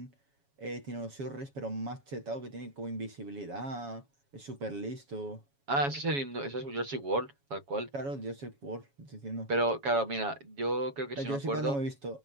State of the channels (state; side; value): late; left; 7.2 ms